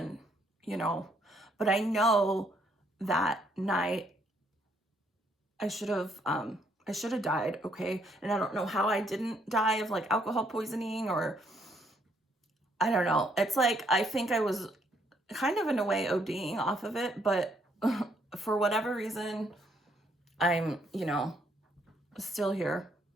but I know that night I should have died, okay? And I don't know how I didn't die of like alcohol poisoning, or I don't know. It's like, I think I was kind of in a way ODing off of it, but for whatever reason, I'm, still here.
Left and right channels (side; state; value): both; normal; correlation 0.70